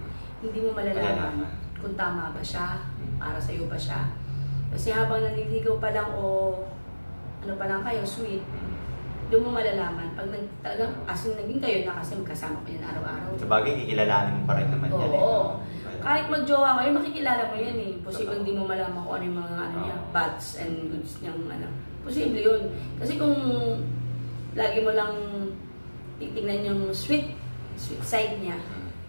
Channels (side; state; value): both; inverted; correlation -1.00